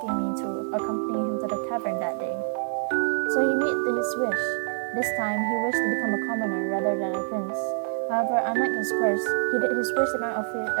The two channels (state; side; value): silent; left; digital silence